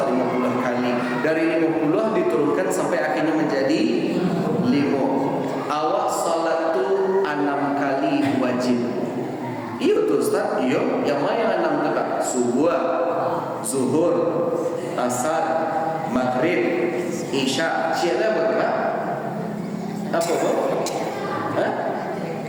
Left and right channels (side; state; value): both; identical; correlation 1.00